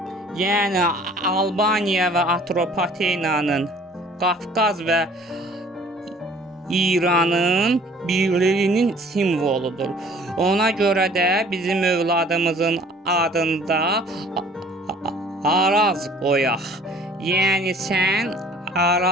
yəni Albaniya və Atropatenanın, Qafqaz və İranın birliyinin simvoludur. Ona görə də bizim övladımızın adında Araz qoyaq. Yəni sən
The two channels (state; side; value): normal; both; correlation 0.53